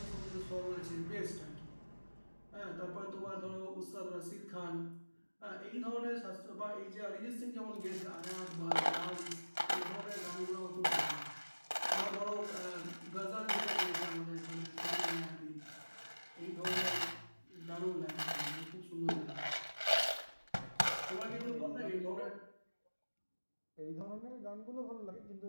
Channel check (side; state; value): both; inverted; correlation -1.00